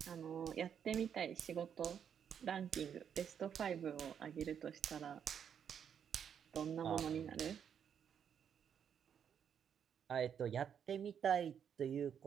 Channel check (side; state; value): left; quieter; 8.1 dB